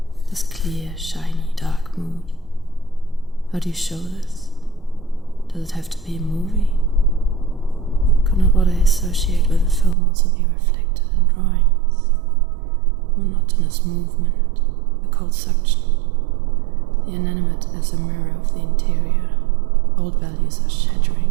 This clear, shiny, dark mood. How do you show this? Does it have to be a movie? Could not what I associate with a film also be reflected in drawings? Monotonous movement, a cold suction. The inanimate as a mirror of the interior. Old values are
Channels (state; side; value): drops out; left; at 10.0 s